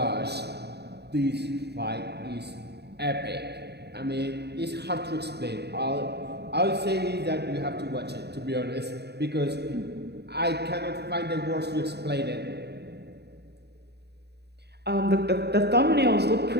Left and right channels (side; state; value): left; late; 0.48 ms